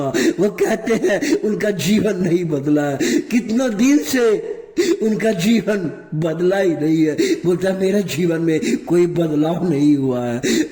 वो कहते हैं उनका जीवन नहीं बदला है, कितना दिन से उनका जीवन बदला ही नहीं है। बोलता मेरे जीवन में कोई बदलाव नहीं हुआ है,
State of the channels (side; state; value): both; identical; correlation 1.00